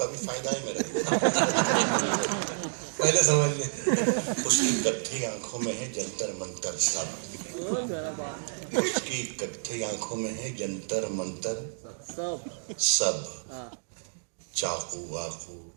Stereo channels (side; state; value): left; silent; digital silence